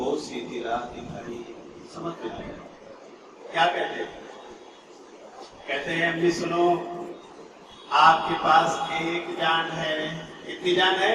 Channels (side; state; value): both; identical; correlation 1.00